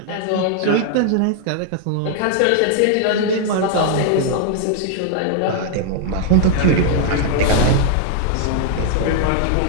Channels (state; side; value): different; both; correlation 0.00